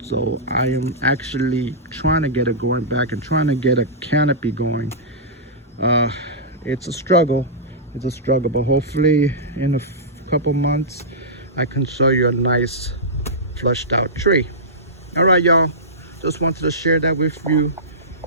so I am actually trying to get it going back and trying to get a canopy going. It's a struggle, but hopefully in a couple months I can show you a nice flushed out tree. All right, y'all, just wanted to share that with you.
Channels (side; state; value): both; normal; correlation -0.16